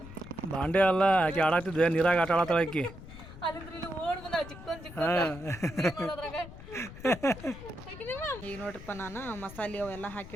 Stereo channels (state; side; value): noise; left; rumble, 15 dB below the sound